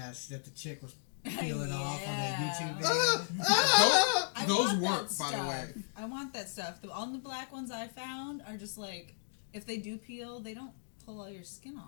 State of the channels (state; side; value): silent; right; digital silence